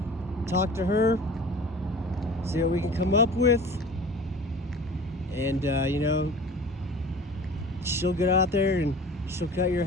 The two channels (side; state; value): both; normal; correlation 0.41